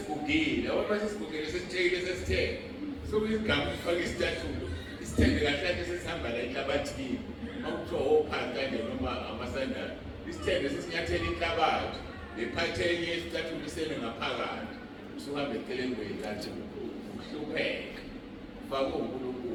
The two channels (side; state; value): both; identical; correlation 1.00